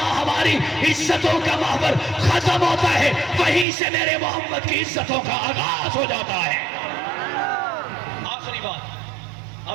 ہماری عزتوں کا محور ختم ہوتا ہے, وہیں سے میرے محمد کی عزتوں کا آغاز ہو جاتا ہے. آخری بات,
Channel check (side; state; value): left; drops out; at 3.7 s